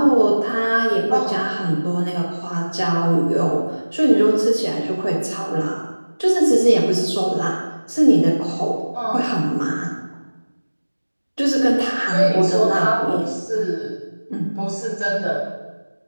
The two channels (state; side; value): inverted; both; correlation -1.00